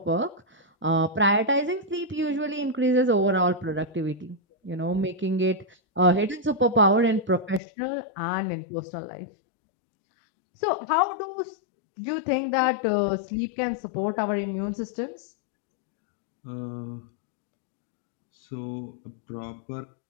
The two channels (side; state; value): right; drops out; at 7.6 s